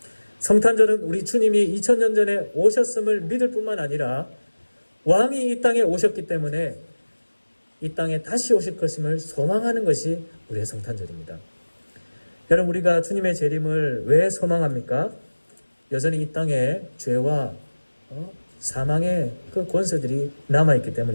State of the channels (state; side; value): inverted; both; correlation -1.00